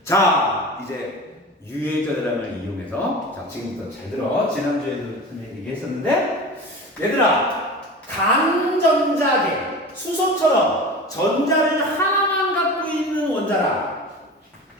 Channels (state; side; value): normal; both; correlation 0.33